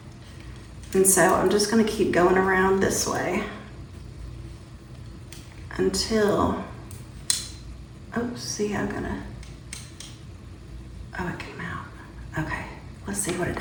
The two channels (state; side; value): identical; both; correlation 1.00